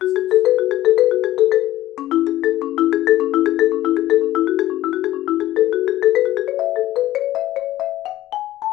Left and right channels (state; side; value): quieter; right; 14.7 dB